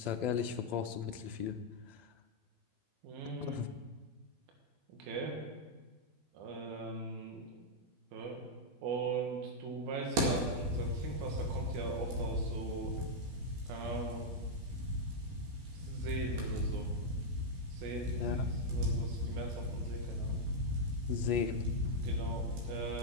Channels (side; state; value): left; late; 12 ms